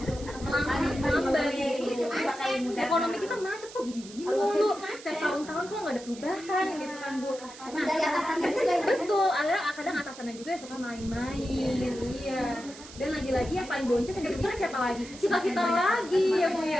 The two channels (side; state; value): right; noise; hiss, 17 dB below the sound